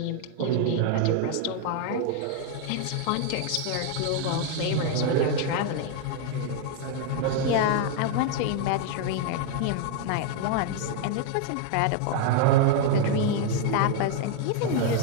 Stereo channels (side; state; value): both; different; correlation 0.00